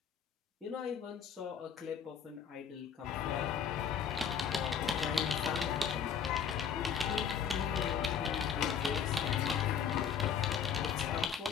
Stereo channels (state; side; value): quieter; right; 7.4 dB